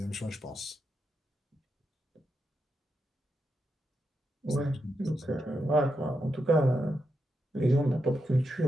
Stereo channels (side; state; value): both; normal; correlation 0.85